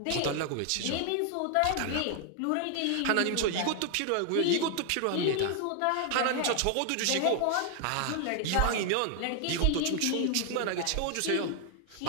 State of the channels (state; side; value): different; both; correlation 0.00